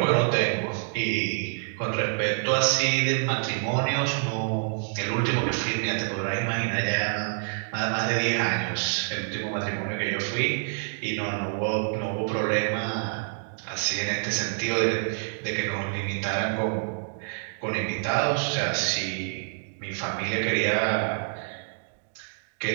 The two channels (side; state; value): left; silent; 60 dB below the other